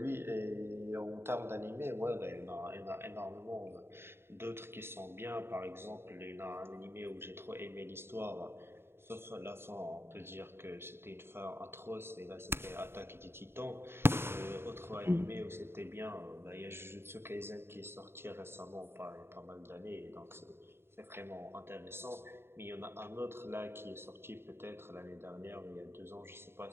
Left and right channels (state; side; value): late; left; 0.11 ms